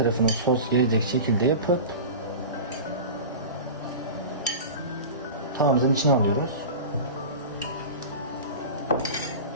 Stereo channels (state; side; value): inverted; both; correlation -0.32